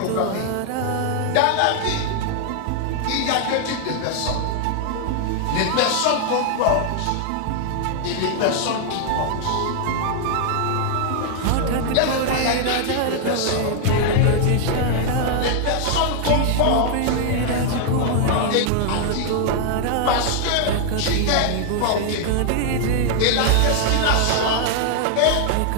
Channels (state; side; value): different; both; correlation 0.00